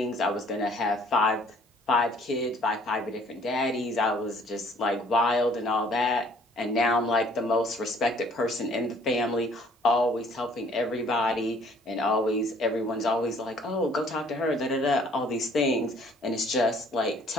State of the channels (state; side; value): normal; both; correlation 0.58